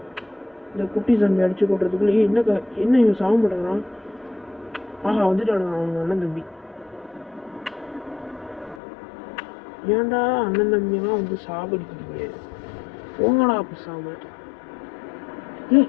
இந்த குட்டி சாமி அடிச்சு கொட்டுறதுக்குள்ளே என்ன இவன் சாக மாட்டேங்கிறான்? ஆஹா, வந்துட்டாங்க அவங்க அண்ணன் தம்பி. ஏன்டா அண்ணன் தம்பியெல்லாம் வந்து சாகடிக்கிறீங்க? போங்கடா பேசாம.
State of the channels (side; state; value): right; drops out; at 8.8 s